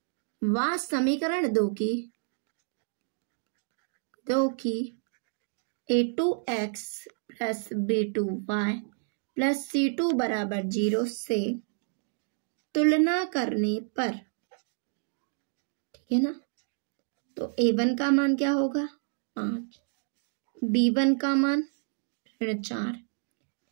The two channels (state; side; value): silent; left; 58 dB below the other